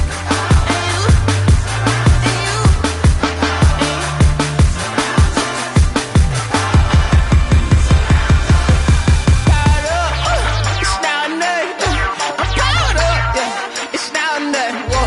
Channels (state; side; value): identical; both; correlation 1.00